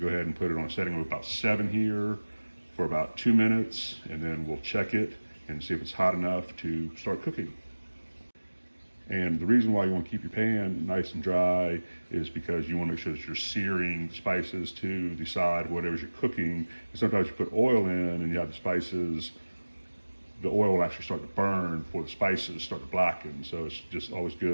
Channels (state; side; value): inverted; both; correlation -1.00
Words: go ahead and put it on a setting of about 7 here for about 2 minutes, and then we'll check it and see if it's hot enough to start cooking. And the reason why you want to keep your pan nice and dry is because you want to make sure that you're searing spices to the side of whatever you're cooking. And sometimes you put oil in and you have the spices, the oil will actually start to burn before the spices start to blacken. So it's just always